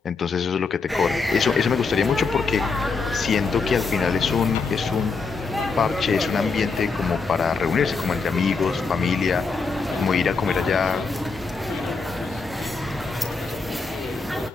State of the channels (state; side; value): quieter; right; 4.5 dB